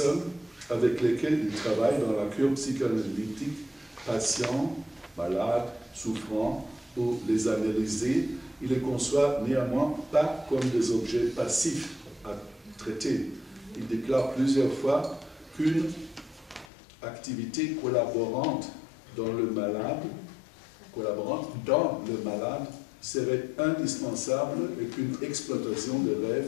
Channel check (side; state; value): right; drops out; at 16.7 s